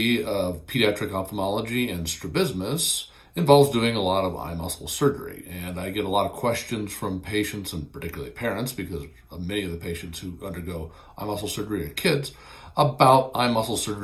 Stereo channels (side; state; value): both; identical; correlation 1.00